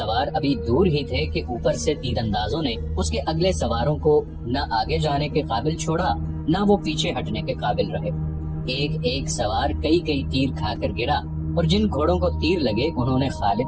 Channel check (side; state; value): both; identical; correlation 1.00